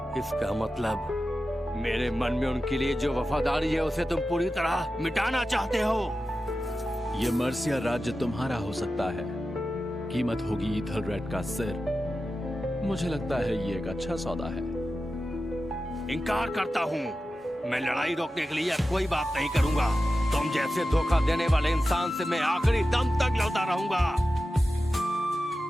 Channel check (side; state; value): both; normal; correlation 0.93